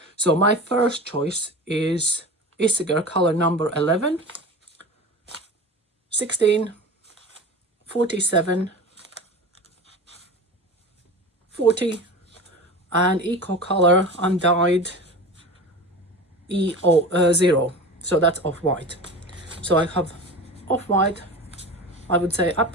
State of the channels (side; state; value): both; normal; correlation 0.32